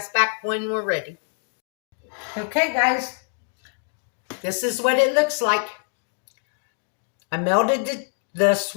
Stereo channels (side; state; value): right; silent; digital silence